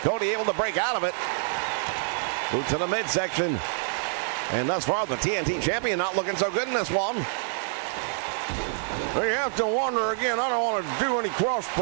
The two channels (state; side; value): silent; left; 60 dB below the other